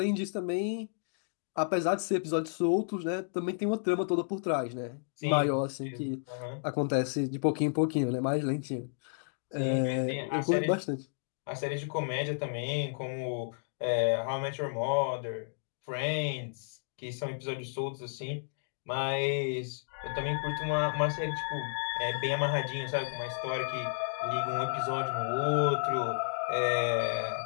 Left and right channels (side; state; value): right; silent; digital silence